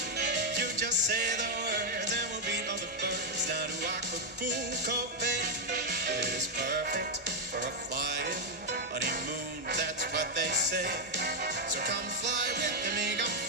You just say the words and we'll beat all the birds down to Acapulco Bay. It is perfect for a flying honeymoon, that's what they say. So come fly with me, come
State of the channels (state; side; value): normal; both; correlation 0.01